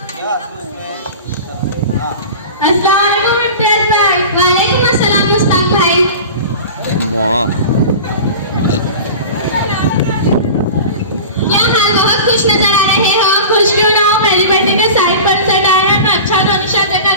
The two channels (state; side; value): inverted; both; correlation -0.34